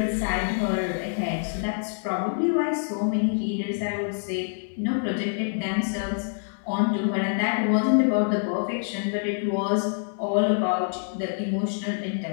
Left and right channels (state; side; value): silent; right; digital silence